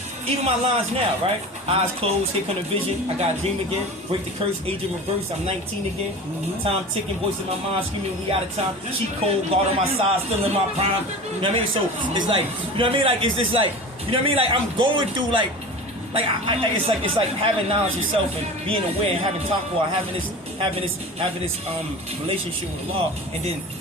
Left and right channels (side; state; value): both; normal; correlation 0.34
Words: Even my lines now, right? Eyes closed, here come the vision. I got a dream again. Break the curse, age in reverse. I'm 19 again. Time ticking, voice in my mind screaming, we out of time. Cheat code, guard on my side, still in my prime. You know what I mean? So it's like, you know what I mean? Like it's just like, you know what I mean? Like I'm going through like it's like having knowledge yourself and being aware and having taqwa, having this relationship with Allah, and then